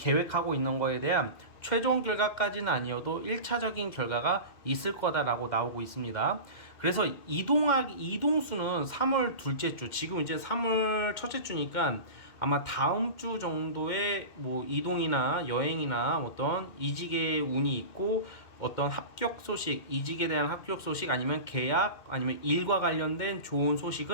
있는 거에 대한 최종 결과까지는 아니어도 1차적인 결과가 있을 거다라고 나오고 있습니다. 그래서 이동수는 3월 둘째 주, 지금 이제 3월 첫째 주니까 아마 다음 주 정도에 뭐 이동이나 여행이나 어떤 이직의 운이 있고 어떤 합격 소식, 이직에 대한 합격 소식 아니면 계약 아니면 일과 관련된 좋은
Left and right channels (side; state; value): right; late; 2.1 ms